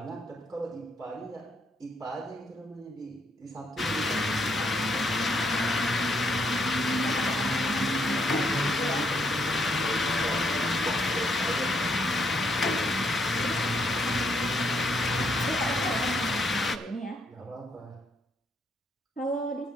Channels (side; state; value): both; normal; correlation 0.74